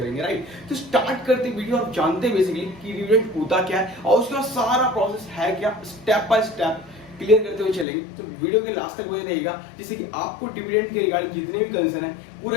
राइट, तो स्टार्ट करते वीडियो और जानते हैं बेसिकली कि डिविडेंड होता क्या है और उसका सारा प्रोसेस है क्या, स्टेप बाय स्टेप क्लियर करते हुए चलेंगे। तो वीडियो के लास्ट तक बने रहेगा, जिससे कि आपको डिविडेंड के रिगार्डिंग जितने भी कंसर्न है पूरे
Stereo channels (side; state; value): right; drops out; at 7.9 s